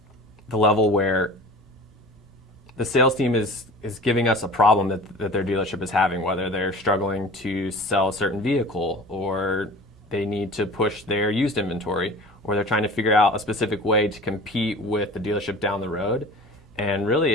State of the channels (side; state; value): both; normal; correlation 0.40